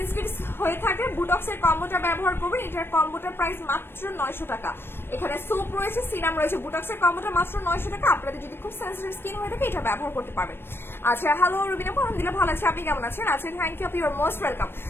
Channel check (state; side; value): late; right; 0.11 ms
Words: হয়ে থাকে বুটক্সের কম্বোটা ব্যবহার করবেন। এটার কম্বোটার প্রাইস মাত্র 900 টাকা। এখানে সোপ রয়েছে, সিরাম রয়েছে, বুটক্সের কম্বোটা মাত্র 900 টাকা। আপনাদের যদি খুব সেন্সিটিভ স্কিন হয়ে থাকে এটা ব্যবহার করতে পারবেন। আচ্ছা হ্যালো রুবিনা আপু, আলহামদুলিল্লাহ ভালো আছে, আপনি কেমন আছেন? আচ্ছা থ্যাংক ইউ আপু, ইউ আর মোস্ট ওয়েলকাম।